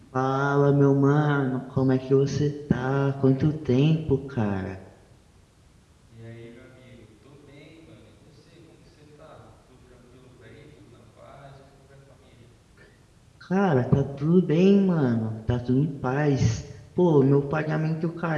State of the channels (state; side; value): identical; both; correlation 1.00